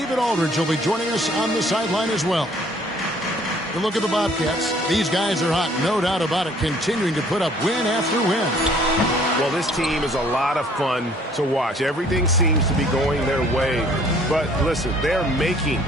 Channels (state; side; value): normal; both; correlation 0.58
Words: Aldridge will be joining us on the sideline as well. You look at the Bobcats. These guys are hot, no doubt about it, continuing to put up win after win. Well, this team is a lot of fun to watch. Everything seems to be going their way. But listen, they're making